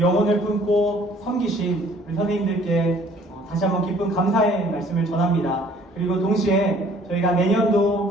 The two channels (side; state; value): both; normal; correlation 0.56